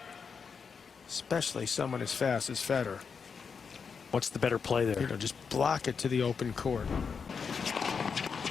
Especially someone as fast as Federer. What's the better play there? You know, just block it to the open court.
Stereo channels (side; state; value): right; quieter; 5.9 dB